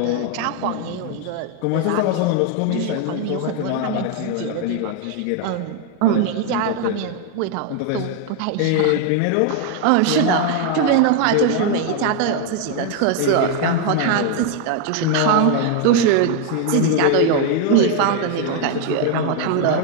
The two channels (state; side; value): different; both; correlation 0.01